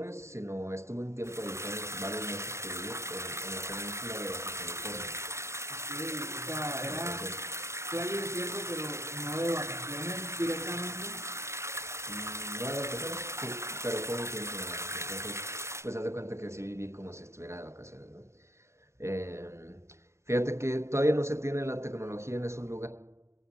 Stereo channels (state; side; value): late; left; 0.13 ms